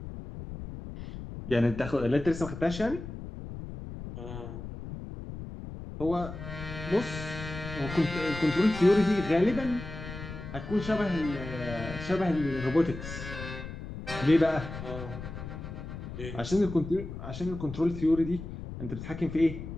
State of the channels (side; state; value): left; noise; rumble, 9 dB below the sound